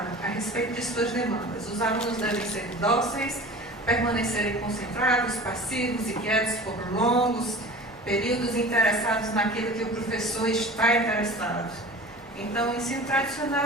a respeito de suas demandas. Os alunos devem ser dóceis, permanecerem concentrados, passivos e quietos por longos períodos, interessados naquilo que o professor está interessado. Então, o ensino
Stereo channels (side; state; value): left; noise; hum, 28 dB below the sound